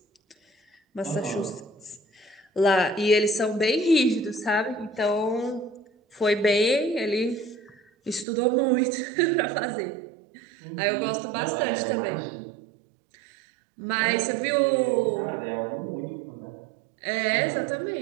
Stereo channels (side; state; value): left; drops out; at 8.2 s